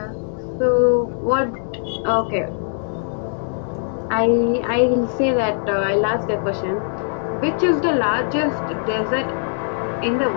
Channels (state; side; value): silent; right; digital silence